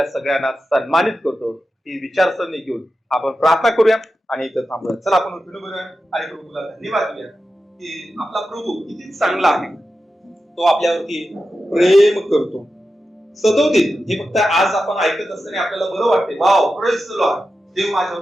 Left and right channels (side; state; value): both; normal; correlation 0.91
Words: सगळ्यांना सन्मानित करतो. ही विचारसरणी घेऊन आपण प्रार्थना करूया आणि इथं थांबूया. चला आपण उठून बघूया आणि प्रभूला धन्यवाद देऊया की आपला प्रभू किती चांगला आहे. तो आपल्यावरती प्रेम करतो. सदोदित हे फक्त आज आपण ऐकत असताना आपल्याला बरं वाटते, वाव प्रेज द लॉर्ड, देव